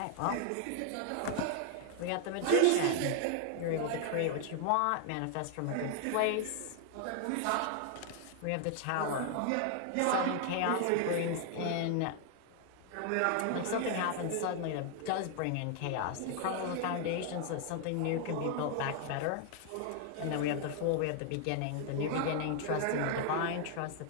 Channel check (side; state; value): both; different; correlation 0.00